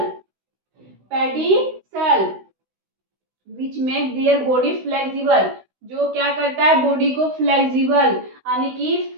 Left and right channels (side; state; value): left; late; 16 ms